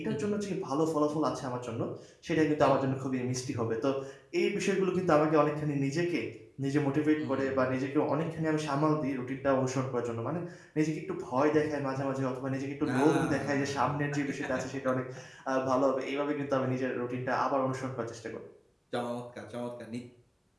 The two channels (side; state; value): both; identical; correlation 1.00